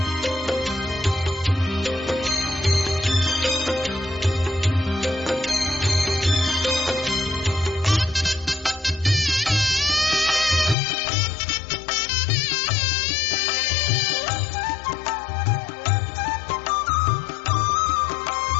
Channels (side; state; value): right; drops out; at 10.8 s